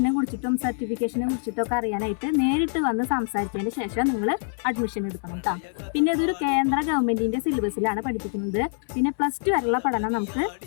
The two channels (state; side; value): silent; right; 62 dB below the other